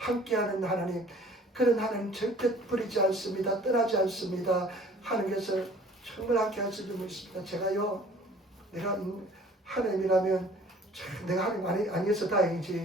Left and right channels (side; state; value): both; normal; correlation 0.52